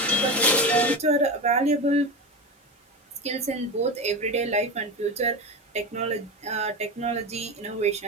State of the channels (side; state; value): both; normal; correlation 0.22